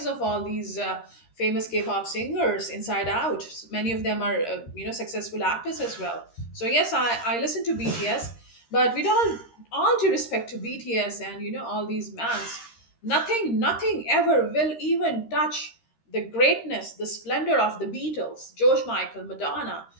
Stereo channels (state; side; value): late; right; 13 ms